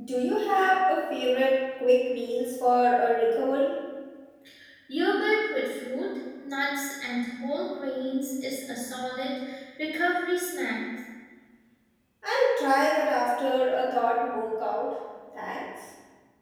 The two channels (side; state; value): both; identical; correlation 1.00